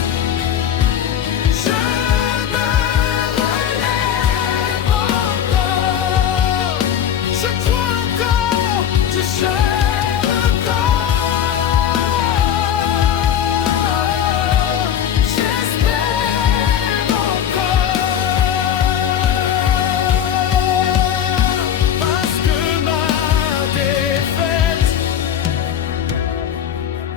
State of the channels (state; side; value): quieter; right; 9.5 dB